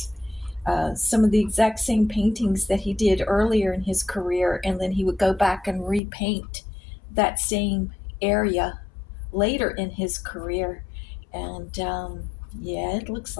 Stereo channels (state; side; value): drops out; right; at 6.0 s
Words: Some of the exact same paintings that he did earlier in his career, and then he would go back and repaint that same area later in his career. And yeah, it looks